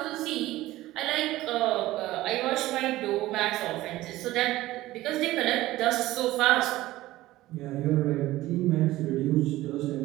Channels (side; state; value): left; quieter; 16.7 dB